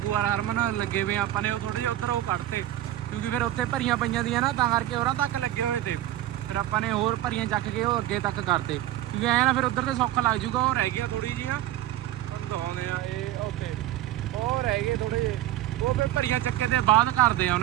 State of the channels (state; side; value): quieter; left; 13.9 dB